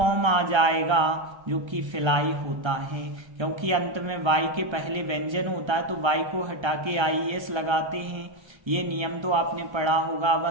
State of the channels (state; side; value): late; left; 1.3 ms